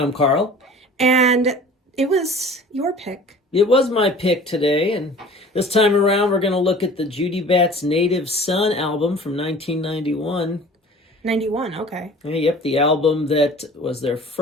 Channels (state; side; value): normal; both; correlation 0.45